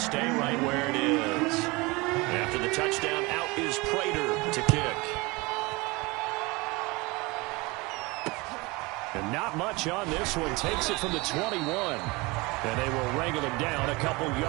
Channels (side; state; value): left; quieter; 24.5 dB